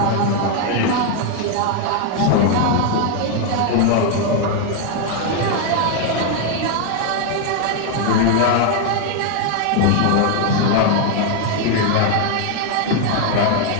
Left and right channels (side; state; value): both; different; correlation 0.00